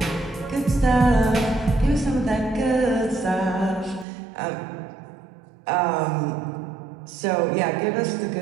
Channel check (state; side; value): drops out; left; at 4.0 s